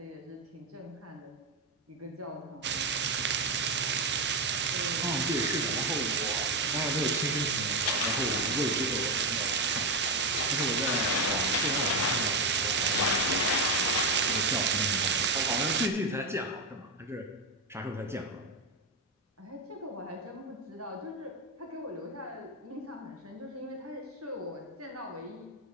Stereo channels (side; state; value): left; quieter; 3.0 dB